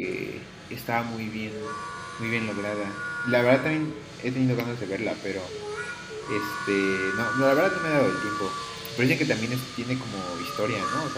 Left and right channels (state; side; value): identical; both; correlation 1.00